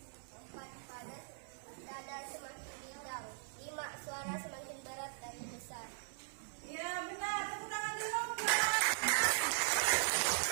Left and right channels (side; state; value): left; silent; 51 dB below the other